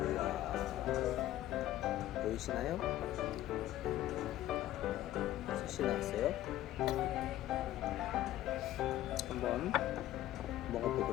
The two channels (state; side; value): quieter; right; 13.9 dB